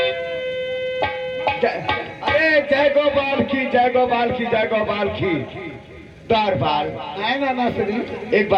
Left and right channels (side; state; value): both; identical; correlation 1.00